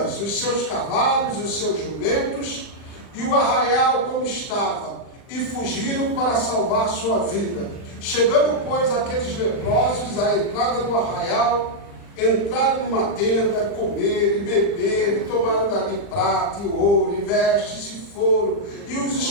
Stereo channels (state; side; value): late; right; 39 ms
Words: os seus cavalos, os seus jumentos e o arraial como estava, e fugiram para salvar sua vida. Chegando, pois, aqueles leprosos à entrada do arraial, entraram numa tenda, comeram e beberam, e tomaram dali prata e ouro, e vestes, e foram, e os